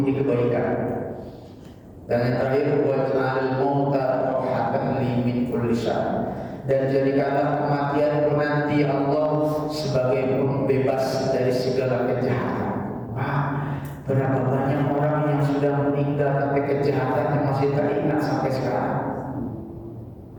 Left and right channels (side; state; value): both; identical; correlation 1.00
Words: kebaikan. Dan yang terakhir, waj'al mauta rahatan li min kulli syarr. Dan jadikanlah kematian nanti Allah sebagai pembebas dari segala kejahatan. Berapa banyak orang yang sudah meninggal tapi kejahatannya masih teringat sampai sekarang.